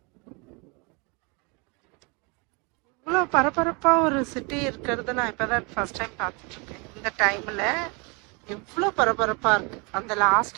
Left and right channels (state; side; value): quieter; left; 30.6 dB